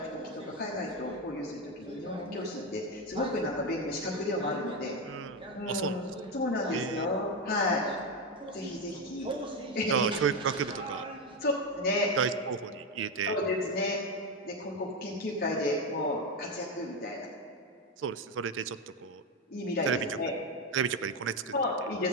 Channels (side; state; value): both; normal; correlation 0.11